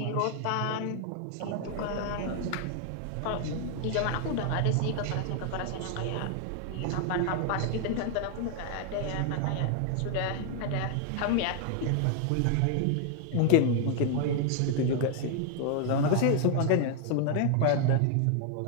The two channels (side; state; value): both; different; correlation 0.00